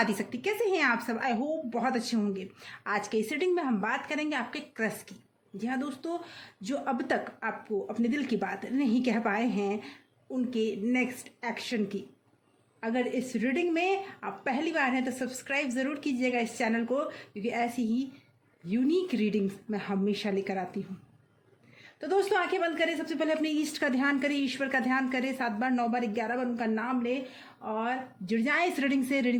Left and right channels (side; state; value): both; identical; correlation 1.00